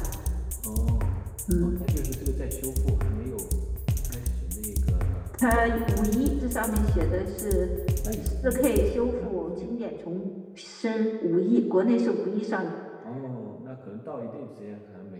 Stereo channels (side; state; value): both; identical; correlation 1.00